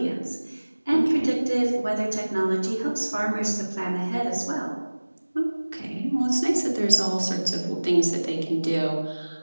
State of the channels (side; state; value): both; inverted; correlation -1.00